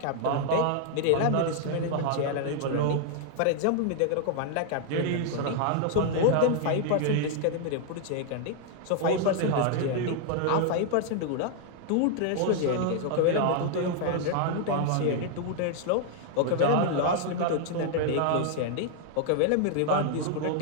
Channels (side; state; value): both; different; correlation 0.00